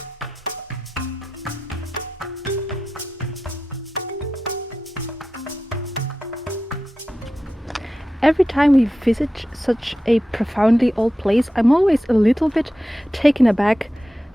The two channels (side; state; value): both; normal; correlation 0.91